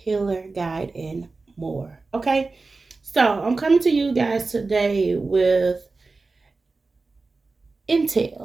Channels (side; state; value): left; quieter; 3.8 dB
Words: guide, and more. Okay, so I'm coming to you guys today with